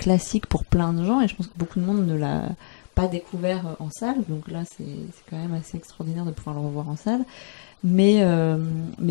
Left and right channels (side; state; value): right; silent; digital silence